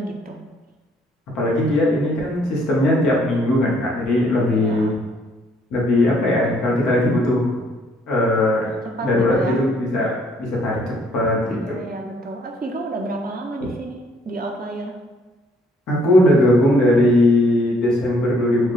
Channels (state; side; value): normal; both; correlation 0.65